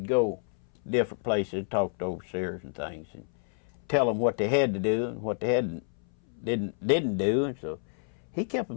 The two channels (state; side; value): silent; right; 58 dB below the other